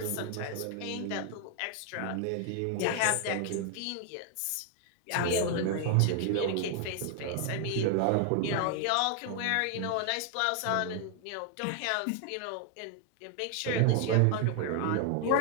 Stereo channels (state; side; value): different; both; correlation 0.00